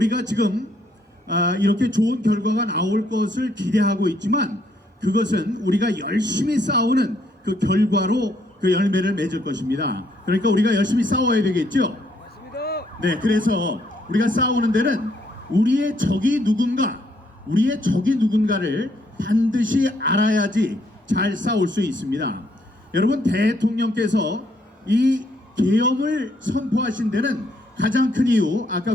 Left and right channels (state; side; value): normal; both; correlation 0.70